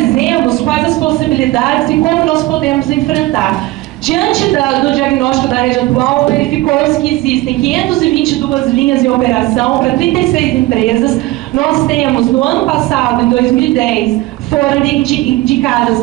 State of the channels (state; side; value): quieter; left; 18.6 dB